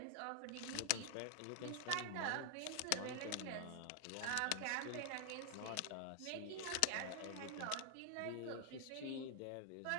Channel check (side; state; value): both; different; correlation 0.00